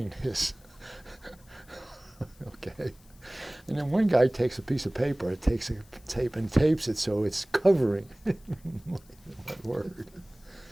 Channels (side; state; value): left; noise; hiss, 28 dB below the sound